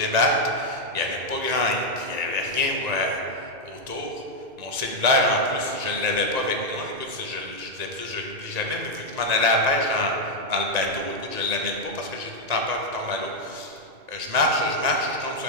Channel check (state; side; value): late; left; 1.9 ms